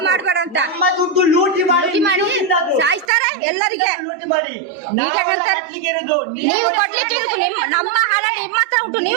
ಮಾಡಬೇಡ ಅಂತ ನಮ್ಮ ದುಡ್ಡು ಲೂಟಿ ಮಾಡಿ ಸಾಯಿಸ್ತಾರೆ ಎಲ್ಲರಿಗೆ ಲೂಟಿ ಮಾಡಿ ನೀವು ಕೊಡ್ಲಿಕ್ಕೆ ನಮ್ಮ ಹಣ ನಿಮ್ಮ ಹತ್ರ ಉಂಟು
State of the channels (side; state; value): left; drops out; at 3.1 s